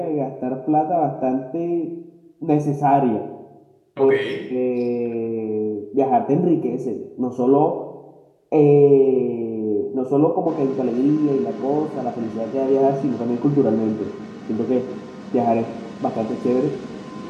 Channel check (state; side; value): identical; both; correlation 1.00